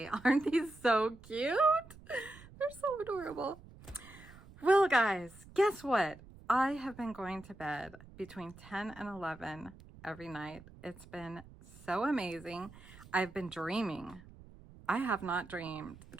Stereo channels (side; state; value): right; noise; rumble, 20 dB below the sound